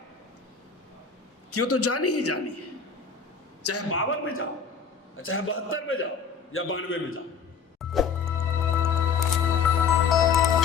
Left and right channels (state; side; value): quieter; right; 6.0 dB